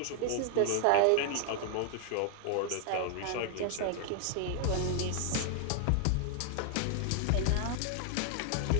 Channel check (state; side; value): different; both; correlation 0.00